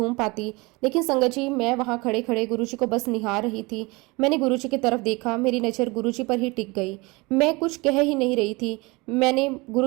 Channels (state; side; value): quieter; left; 25.1 dB